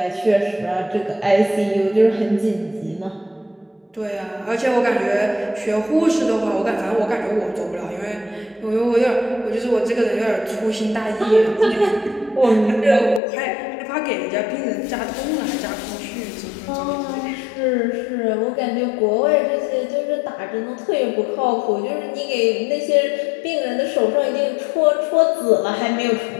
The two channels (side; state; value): right; drops out; at 13.2 s